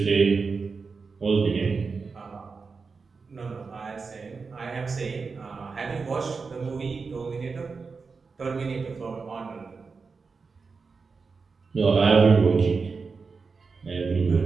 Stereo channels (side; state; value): left; quieter; 4.8 dB